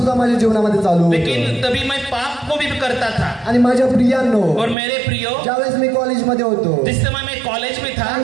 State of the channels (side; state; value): left; drops out; at 4.8 s